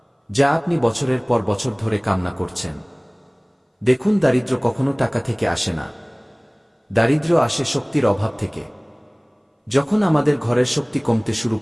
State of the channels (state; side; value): identical; both; correlation 1.00